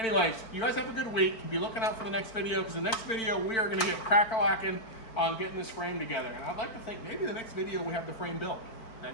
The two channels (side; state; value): right; late; 4.5 ms